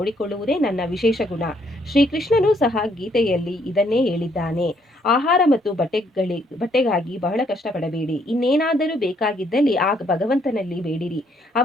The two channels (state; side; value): normal; both; correlation 0.69